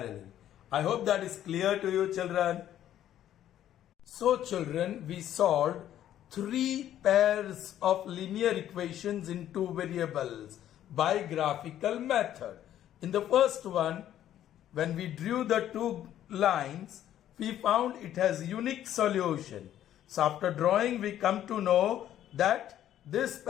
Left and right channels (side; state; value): right; quieter; 11.6 dB